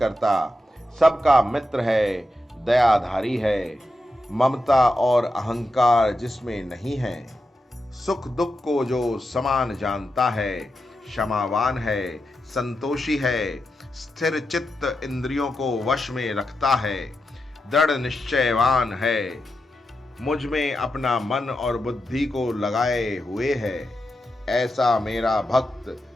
सबका मित्र है, दयाधारी है, ममता और अहंकार जिसमें नहीं है, सुख दुख को जो समान जानता है, क्षमावान है, संतोषी है, स्थिर चित्त इंद्रियों को वश में रखता है, दृढ़ निश्चयवान है, मुझ में अपना मन और बुद्धि को लगाए हुए है, ऐसा मेरा भक्त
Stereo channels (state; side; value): normal; both; correlation 0.88